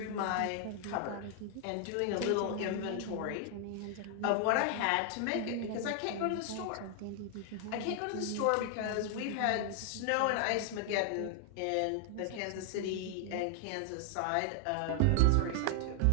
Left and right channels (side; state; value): both; different; correlation 0.00